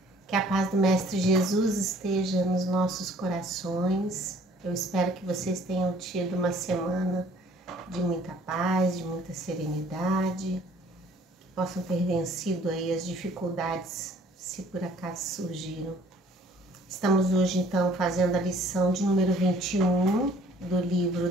Que a paz do Mestre Jesus esteja nos nossos corações. Eu espero que vocês tenham tido uma semana de muita paz, de muita serenidade, que possam ter vencido aí as dificuldades, se por acaso surgiram. Estamos hoje, então, fazendo a lição de número 21 do livro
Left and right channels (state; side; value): normal; both; correlation 0.56